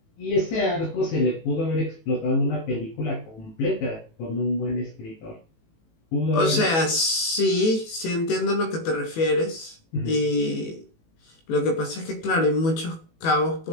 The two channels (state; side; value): late; right; 18 ms